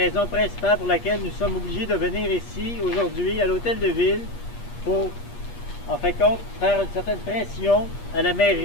principale pour laquelle nous sommes obligés de venir ici aujourd'hui à l'hôtel de ville pour, en fin de compte, faire une certaine pression à la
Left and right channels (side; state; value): right; late; 8.4 ms